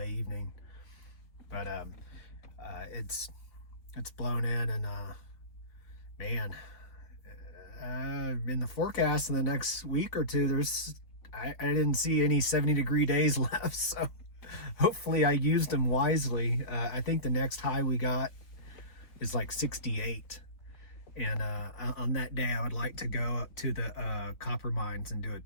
evening, but it's blown in, and man, in the forecast in the next week or two, I didn't see any 70-degree days left, so hopefully I used them wisely. I think the next high we got is like 68, and on that day I would like to go up to the copper mines and do a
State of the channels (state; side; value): late; right; 3.7 ms